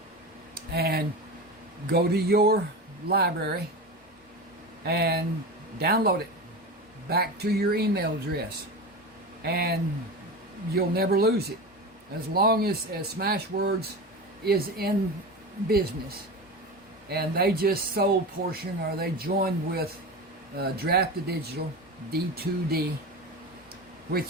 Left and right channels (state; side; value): normal; both; correlation 0.26